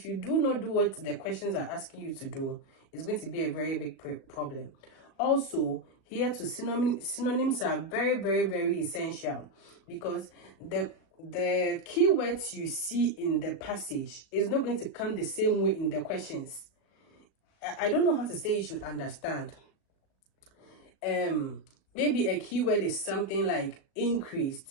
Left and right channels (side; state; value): right; late; 37 ms